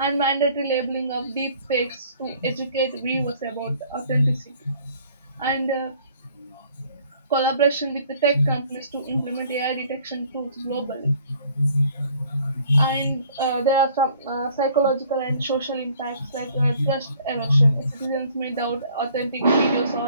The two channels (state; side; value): inverted; both; correlation -0.57